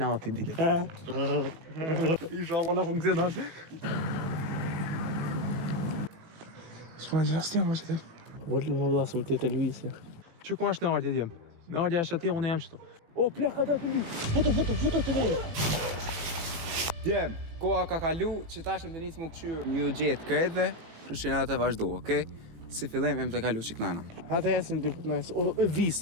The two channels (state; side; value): late; left; 18 ms